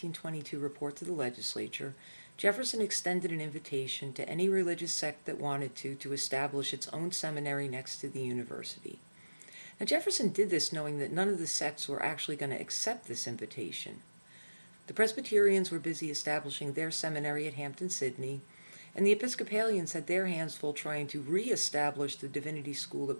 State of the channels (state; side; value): inverted; both; correlation -1.00